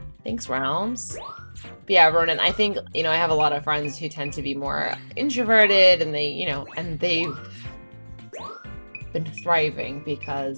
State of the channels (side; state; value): both; inverted; correlation -1.00